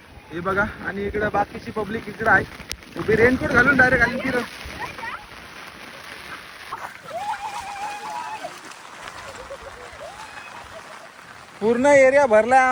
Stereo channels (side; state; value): both; identical; correlation 1.00